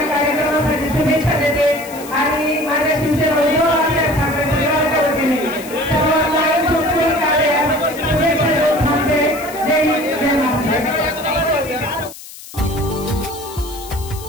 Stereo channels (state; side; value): noise; left; hiss, 16 dB below the sound